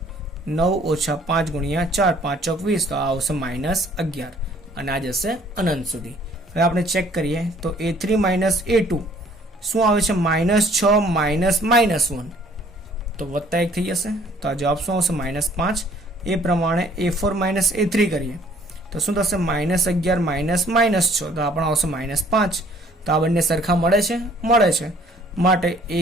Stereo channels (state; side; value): normal; both; correlation 0.58